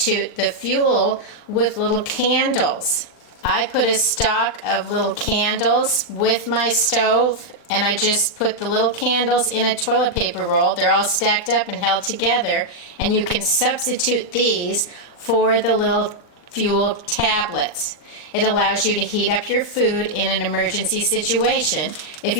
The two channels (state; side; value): late; right; 40 ms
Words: the fuel with little candles. I put a stock of little candles with my stove, and I just put the little candles in a toilet paper roll. They're all stacked up and held together, and you can substitute these for the little fuel tablets. It allows you to heat up your food in an emergency situation if